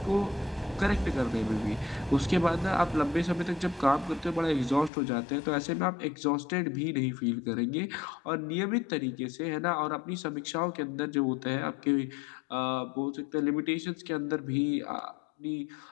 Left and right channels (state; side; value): drops out; right; at 4.9 s